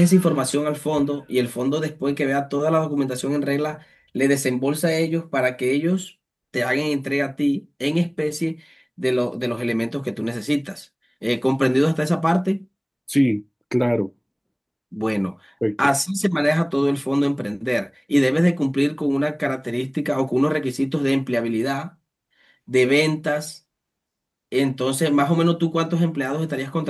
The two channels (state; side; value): identical; both; correlation 1.00